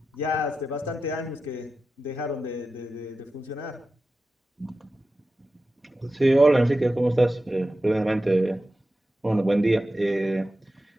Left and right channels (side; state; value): both; normal; correlation 0.92